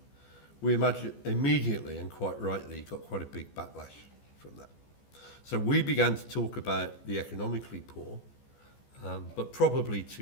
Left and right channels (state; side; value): late; right; 14 ms